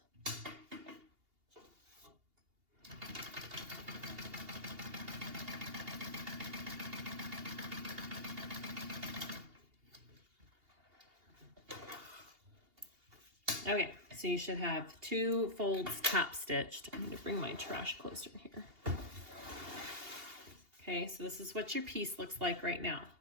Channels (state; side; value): late; left; 2.8 ms